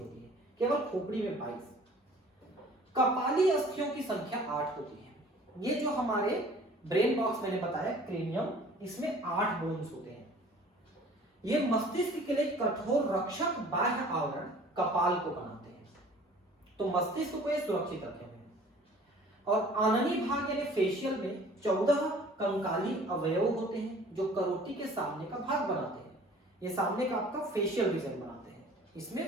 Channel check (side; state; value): both; normal; correlation 0.50